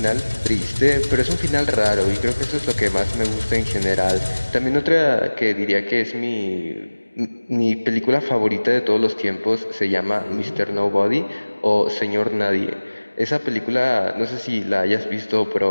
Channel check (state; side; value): inverted; both; correlation -1.00